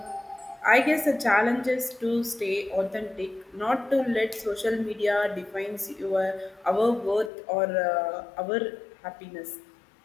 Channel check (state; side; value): drops out; right; at 7.3 s